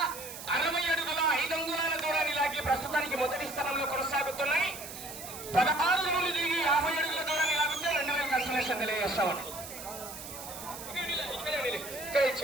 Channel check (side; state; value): right; noise; hiss, 11 dB below the sound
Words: ప్రస్తుతానికి మొదటి స్థానంలో కొనసాగుతున్నాయి. 16 నుండి దిగి 50 అడుగుల దూరాన్ని లాగితే 2000 కన్సలేషన్ తెలియజేస్తామని